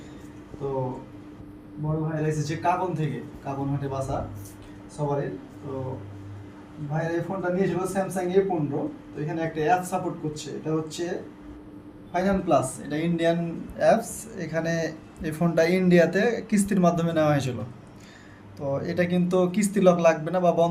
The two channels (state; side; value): identical; both; correlation 1.00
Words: তো বড় ভাইরা এসেছে কাবন থেকে, কাবন হাটে বাসা সবারই। তো ভাইরা এই ফোনটা নিয়েছিল স্যামসাং A15। তো এখানে একটা অ্যাপ সাপোর্ট করছে, এটা হচ্ছে ফাইনাল প্লাস। এটা ইন্ডিয়ান অ্যাপস। এখানে এই ফোনটা ইন্ডিয়াতে কিস্তির মাধ্যমে নেওয়া হয়েছিল। তো এটা কিন্তু কিস্তি লক লাগবে না বা